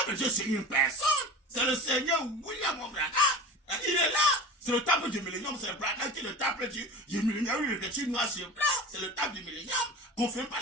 de Dieu, c'est une personne. C'est le Seigneur William Branham. Il est là. C'est le temple du millénium, c'est le Branham qui est le temple du millénium. Il est écrit noir sur blanc, c'est le temple du millénium. Confirme par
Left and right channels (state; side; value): normal; both; correlation 0.34